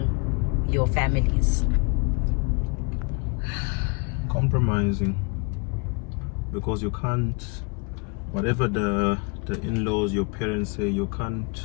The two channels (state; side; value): quieter; right; 33.1 dB